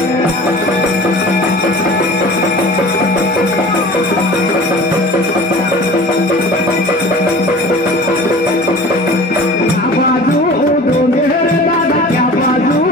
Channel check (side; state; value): both; normal; correlation 0.42